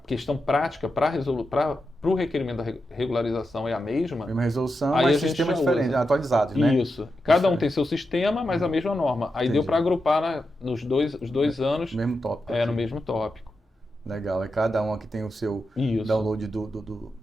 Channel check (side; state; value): both; normal; correlation 0.88